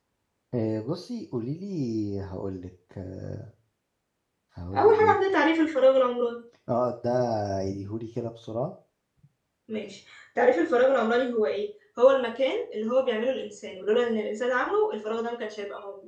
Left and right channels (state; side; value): identical; both; correlation 1.00